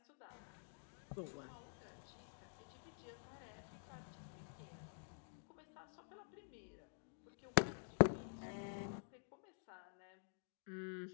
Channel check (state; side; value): silent; right; digital silence